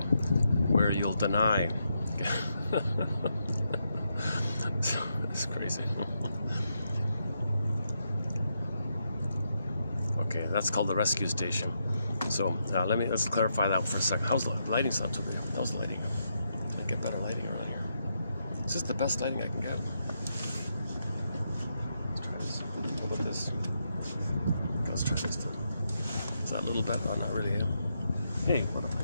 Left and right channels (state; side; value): inverted; both; correlation -0.81